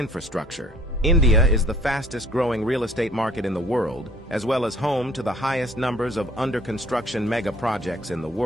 India is the fastest growing real estate market in the world, as well as home to the highest numbers of under-construction mega projects in the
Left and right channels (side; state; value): both; normal; correlation 0.56